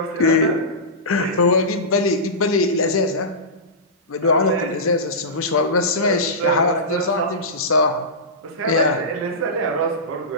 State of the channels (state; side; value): normal; both; correlation -0.18